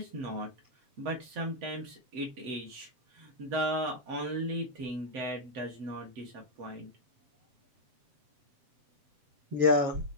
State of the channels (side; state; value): left; late; 7.8 ms